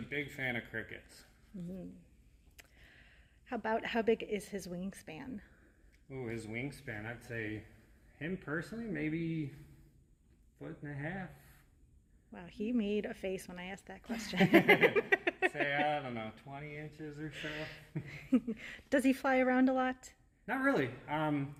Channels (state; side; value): identical; both; correlation 1.00